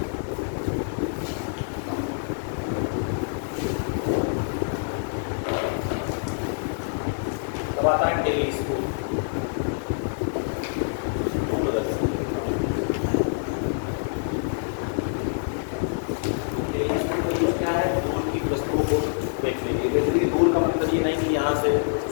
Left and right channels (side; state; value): right; silent; digital silence